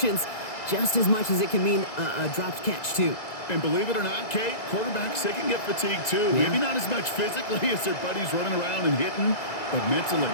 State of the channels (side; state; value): right; late; 2.0 ms